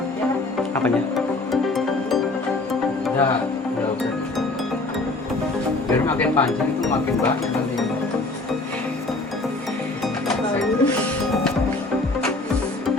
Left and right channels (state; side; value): quieter; right; 3.1 dB